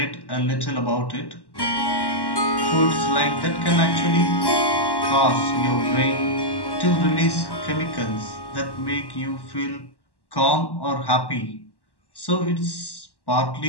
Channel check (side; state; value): right; late; 1.1 ms